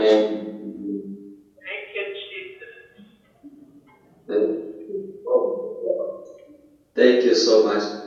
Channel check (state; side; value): identical; both; correlation 1.00